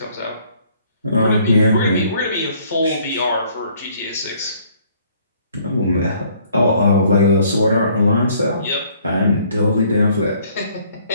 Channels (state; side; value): inverted; both; correlation -0.61